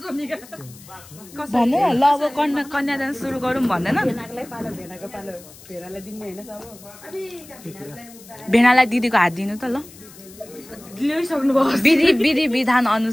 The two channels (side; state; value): left; noise; hiss, 21 dB below the sound